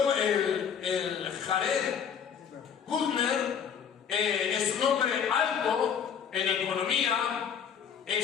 el Jared Kushner es un hombre alto en economía,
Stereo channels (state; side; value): quieter; right; 7.6 dB